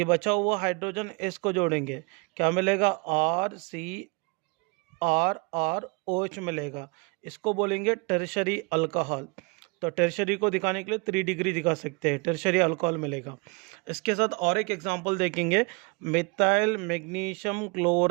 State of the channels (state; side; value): quieter; left; 30.3 dB